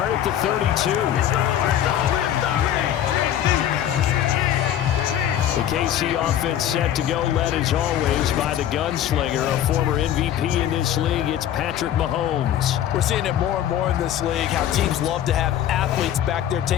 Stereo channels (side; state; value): right; quieter; 10.8 dB